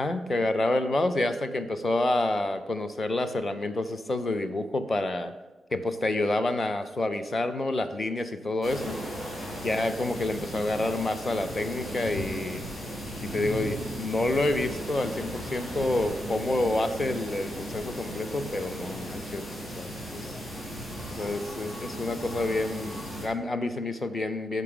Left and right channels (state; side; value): normal; both; correlation 0.87